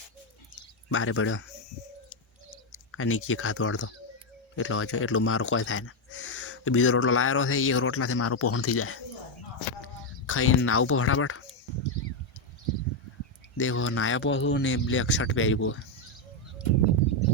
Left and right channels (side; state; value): right; late; 1.3 ms